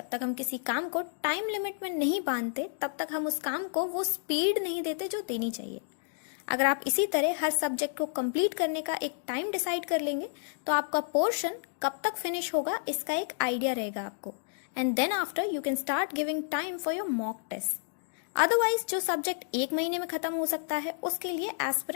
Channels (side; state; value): right; silent; digital silence